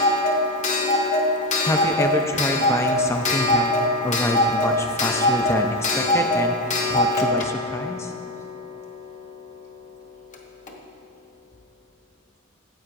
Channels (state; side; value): normal; both; correlation 0.14